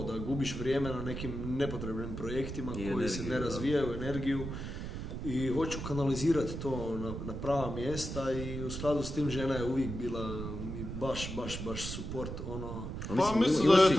da gubiš vrijeme na nekim nepotrebnim projektima koji se ne razvijaju, energiju, i hoću kanalizirati to na prava mjesta i u skladu s tim žena je uvijek bila mi baš support, ono. Pa mislim da je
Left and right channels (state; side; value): noise; right; rumble, 6 dB below the sound